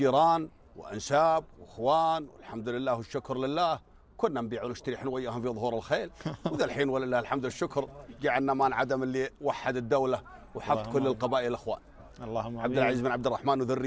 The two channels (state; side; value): identical; both; correlation 1.00